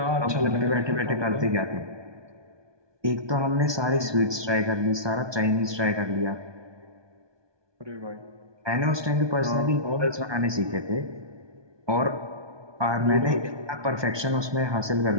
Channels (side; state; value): left; late; 1.2 ms